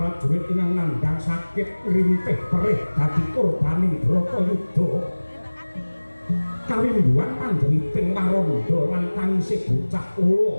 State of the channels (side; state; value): both; inverted; correlation -1.00